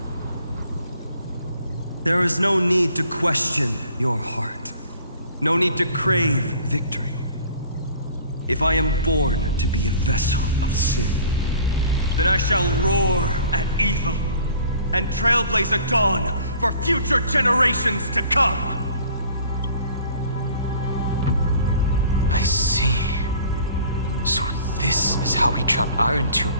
There is no need to question your heart. No need to crave victory. If I am born to be a vessel of sin, then I shall roar at evil and trailblaze a dawn for future generations to come. I see. So this is how he trapped Irontomb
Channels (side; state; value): both; inverted; correlation -0.51